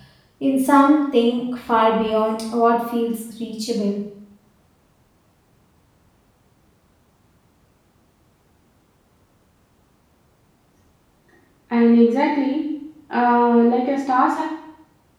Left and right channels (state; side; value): identical; both; correlation 1.00